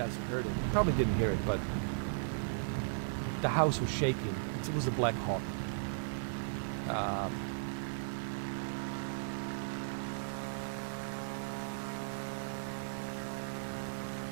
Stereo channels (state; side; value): silent; left; digital silence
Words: heard it. You probably didn't hear it, but the house was shaking. It was a Black Hawk.